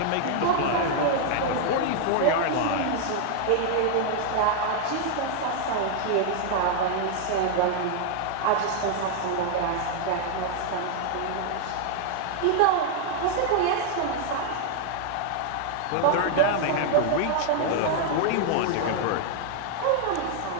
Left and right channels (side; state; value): both; different; correlation 0.00